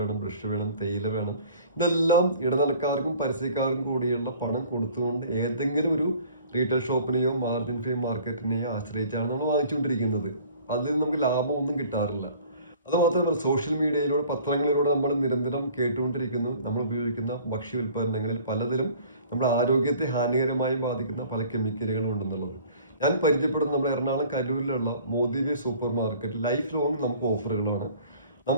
ബ്രഷ് വേണം, തേയില വേണം. ഇതെല്ലാം ഇടനിലക്കാർക്കും പരസ്യക്കാർക്കും കൂടിയുള്ള പണം കൊടുത്തുകൊണ്ട് ഏതെങ്കിലും ഒരു റീറ്റെയിൽ ഷോപ്പിനെയോ മാർജിൻ ഫ്രീ മാർക്കറ്റിനെയോ ആശ്രയിച്ചാണ് നമ്മൾ വാങ്ങിച്ചുകൊണ്ടിരിക്കുന്നത്. അതിൽ നമുക്ക് ലാഭമൊന്നും കിട്ടാറില്ല. അതുമാത്രമല്ല, സോഷ്യൽ മീഡിയയിലൂടെ പത്രങ്ങളിലൂടെ നമ്മൾ നിരന്തരം കേട്ടുകൊണ്ടിരിക്കുന്നു, നമ്മൾ ഉപയോഗിക്കുന്ന ഭക്ഷ്യ ഉൽപ്പന്നങ്ങളിൽ പലതിലും നമ്മുടെ ആരോഗ്യത്തെ ഹാനികരമായി ബാധിക്കുന്ന പല കെമിക്കലുകളും ഉണ്ടെന്നുള്ളത്. ഞാൻ പരിചയപ്പെടുന്ന നമ്മുടെ എറണാകുളം കരൂരിലുള്ള മോദിവേ സൂപ്പർ മാർക്കറ്റ് ലൈഫ് ലോങ് നമുക്ക് ഓഫറുകളാണ്.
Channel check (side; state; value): both; inverted; correlation -0.50